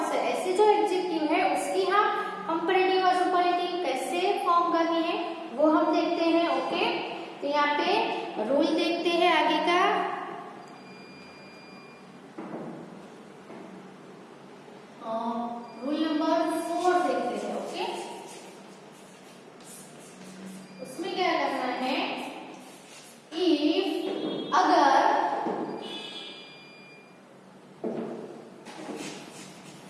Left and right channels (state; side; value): identical; both; correlation 1.00